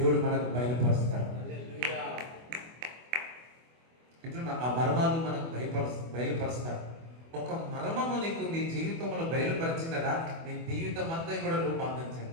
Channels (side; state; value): left; late; 24 ms